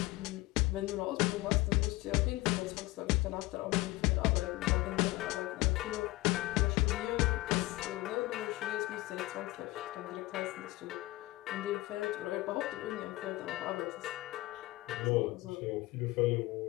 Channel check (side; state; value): right; quieter; 19.6 dB